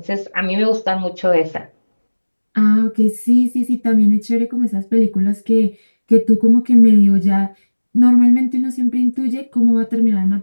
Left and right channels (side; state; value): both; inverted; correlation -1.00